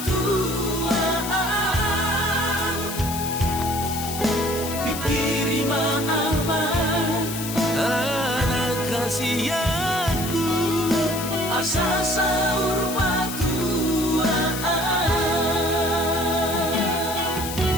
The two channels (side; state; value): left; noise; hiss, 8 dB below the sound